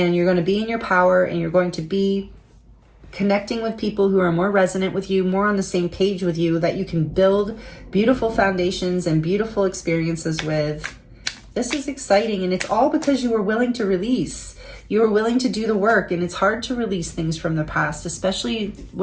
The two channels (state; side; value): identical; both; correlation 1.00